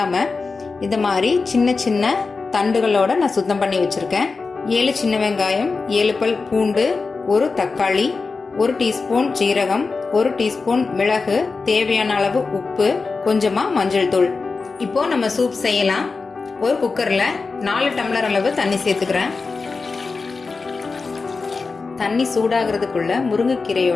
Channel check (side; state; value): right; quieter; 4.3 dB